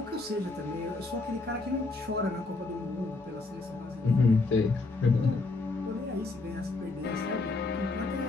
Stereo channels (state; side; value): quieter; right; 3.5 dB